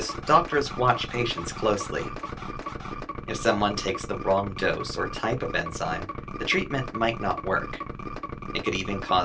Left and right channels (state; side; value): identical; both; correlation 1.00